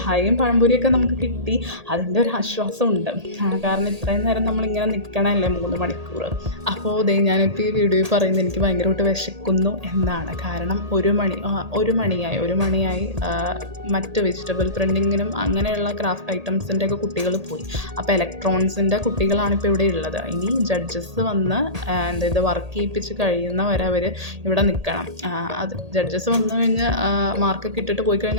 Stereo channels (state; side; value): late; left; 1.8 ms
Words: പഴംപൊരിയൊക്കെ നമുക്ക് കിട്ടി. അതിൻ്റെ ഒരു ആശ്വാസമുണ്ട്. കാരണം ഇത്രയും നേരം നമ്മളിങ്ങനെ നിൽക്കണമല്ലേ 3 മണിക്കൂർ. അപ്പോൾ ഞാനിപ്പോൾ ഈ വീഡിയോയിൽ പറയുന്നത് എനിക്ക് ഭയങ്കരമായിട്ട് വിശക്കുന്നു എന്നാണ്. കാരണം 1 മണിയായി മറ്റ് വെജിറ്റബിൾ പ്രിൻറ്റിങ്ങിനും അങ്ങനെയുള്ള ക്രാഫ്റ്റ് ഐറ്റംസിൻ്റെ ഒക്കെ കുട്ടികൾ പോയി. അപ്പോൾ ഇലക്ട്രോണിക്സിൻ്റെ കുട്ടികളാണിപ്പോൾ ഇവിടെ ഉള്ളത്. ഇനി ജഡ്ജസ് വന്ന് ഇത് വർക്ക് ചെയ്യിപ്പിച്ച് കഴിയുന്നവരെ അവർ ഇവിടെ നിൽക്കണം. അത് ജഡ്ജസ് വന്നു കഴിഞ്ഞ് മാർക്കൊക്കെ ഇട്ടിട്ട് പോയി